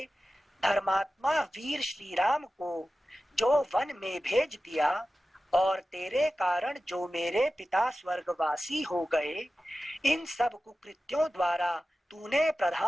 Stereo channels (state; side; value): normal; both; correlation 0.95